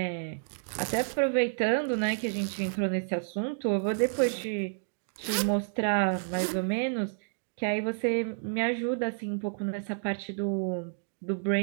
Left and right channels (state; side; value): silent; left; digital silence